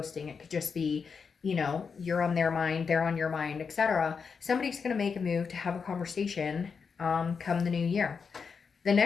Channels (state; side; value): quieter; right; 5.7 dB